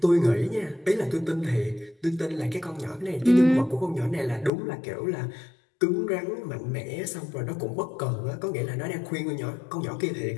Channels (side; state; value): right; drops out; at 4.5 s